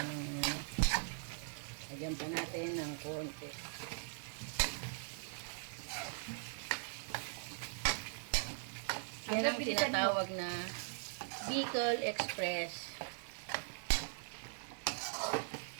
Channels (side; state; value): left; silent; 51 dB below the other